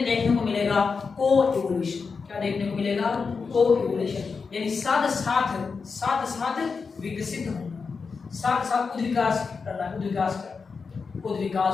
देखने को मिलेगा को इवोल्यूशन। क्या देखने को मिलेगा? को इवोल्यूशन, यानी साथ साथ विकसित होना, साथ साथ उद्विकास करना,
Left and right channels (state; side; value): quieter; right; 5.0 dB